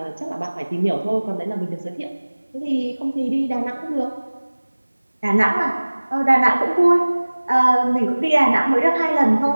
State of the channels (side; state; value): both; inverted; correlation -1.00